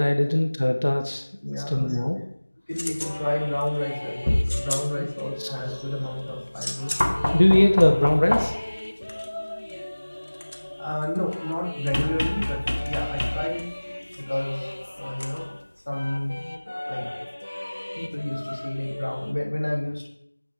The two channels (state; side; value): inverted; both; correlation -1.00